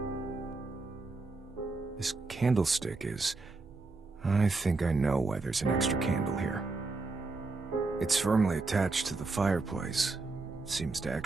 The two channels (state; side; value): quieter; left; 3.7 dB